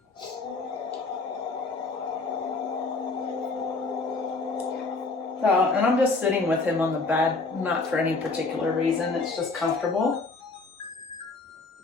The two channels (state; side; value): quieter; right; 3.7 dB